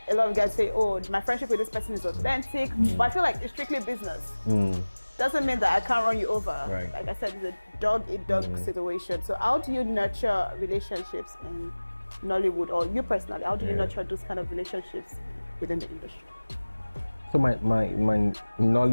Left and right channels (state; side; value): inverted; both; correlation -1.00